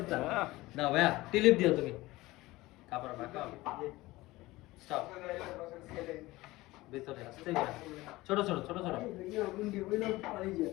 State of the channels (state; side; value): quieter; right; 19.2 dB